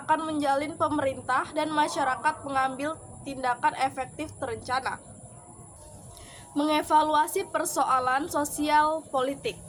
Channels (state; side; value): identical; both; correlation 1.00